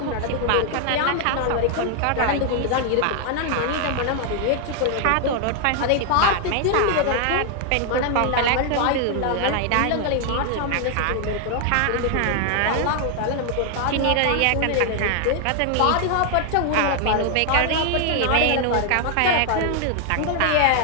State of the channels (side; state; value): both; different; correlation 0.00